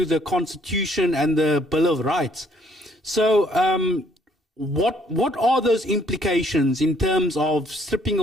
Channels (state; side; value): normal; both; correlation 0.65